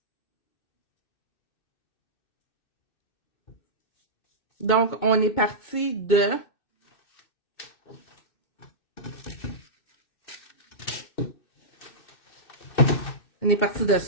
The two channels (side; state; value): right; late; 2.6 ms